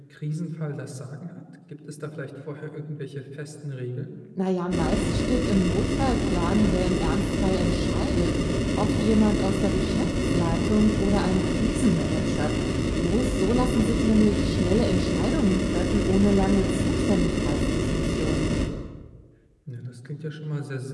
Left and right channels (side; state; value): both; identical; correlation 1.00